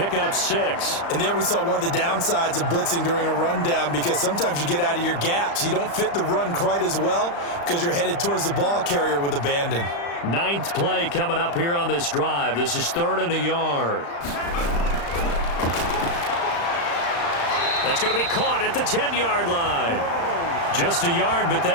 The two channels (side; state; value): right; late; 35 ms